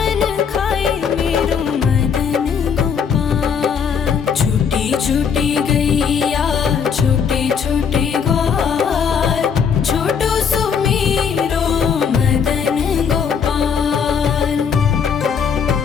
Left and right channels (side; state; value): right; quieter; 6.8 dB